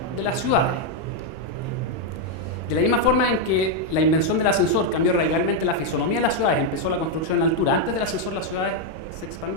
de las ciudades. De la misma forma en que la invención del ascensor cambió radicalmente la fisonomía de las ciudades, empezó la construcción en altura. Antes del ascensor las ciudades se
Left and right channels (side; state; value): right; late; 31 ms